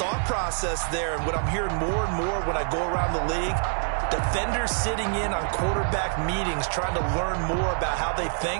process there. And what I'm hearing more and more when I go around the league, defenders sitting in on quarterback meetings trying to learn more about how they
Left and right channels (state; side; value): silent; left; digital silence